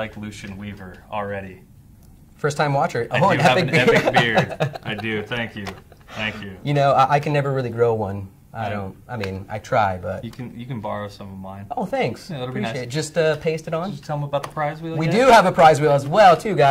Lucian Weaver already. First time watcher. I do have an epic beard. I do. Thank you. Thank you. You know, I can never really grow one. I mean, I try, but you can borrow some of mine. Oh, thanks. Yeah, that'll be nice. Appreciate it. Just paste it on. Did you tell them about the prize wheel? We do have a prize wheel as well, too,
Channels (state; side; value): identical; both; correlation 1.00